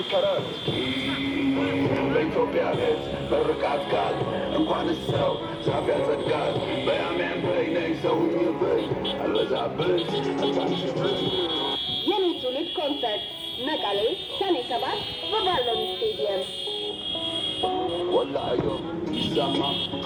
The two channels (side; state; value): both; identical; correlation 1.00